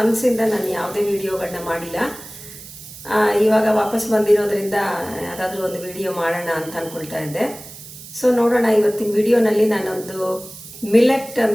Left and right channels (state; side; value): noise; right; hiss, 16 dB below the sound